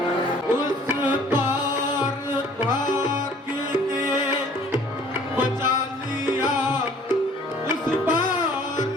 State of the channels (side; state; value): both; normal; correlation 0.54